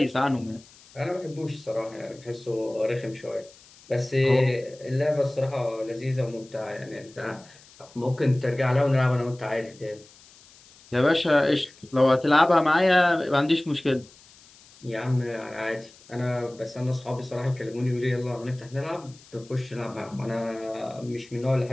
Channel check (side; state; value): left; noise; hiss, 25 dB below the sound